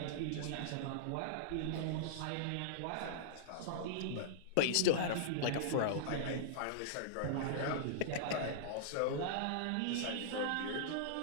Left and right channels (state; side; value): different; both; correlation -0.02